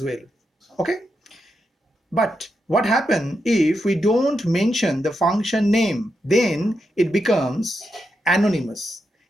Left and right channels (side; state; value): both; normal; correlation 0.85